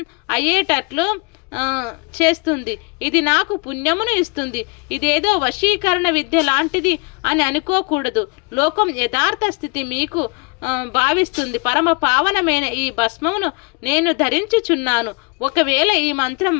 అయ్యేటట్లు చేస్తుంది. ఇది నాకు పుణ్యమును ఇస్తుంది. ఇదేదో వశీకరణ విద్య లాంటిది అని అనుకోకూడదు. లోకం యథార్థ స్థితి మీకు భావిస్తుంది. పరమ పావనమైన ఈ భస్మమును నేను ధరించుచున్నాను. ఒకవేళ ఈ మంత్రం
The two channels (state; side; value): quieter; right; 31.4 dB